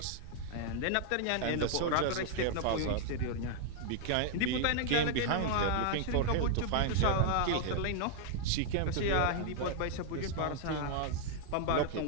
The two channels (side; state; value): both; different; correlation 0.00